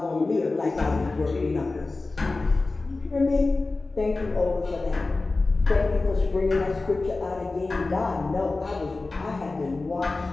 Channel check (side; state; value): right; quieter; 3.5 dB